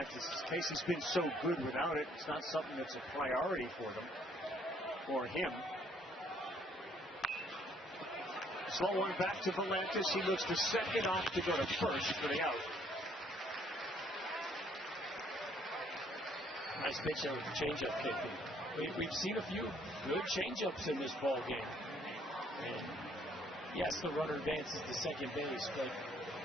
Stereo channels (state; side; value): normal; both; correlation 0.65